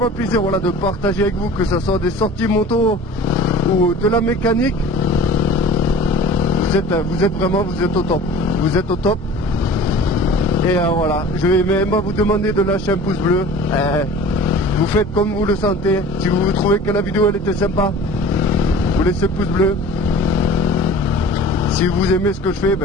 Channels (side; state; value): both; normal; correlation 0.42